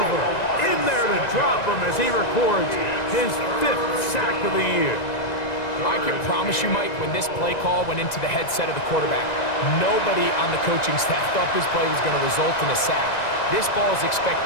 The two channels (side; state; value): right; late; 1.9 ms